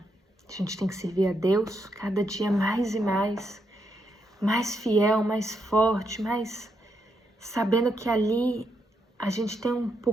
A gente tem que servir a Deus cada dia mais e mais fiel, mais forte, mais sabendo que ali a gente tem um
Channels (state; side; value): normal; both; correlation 0.80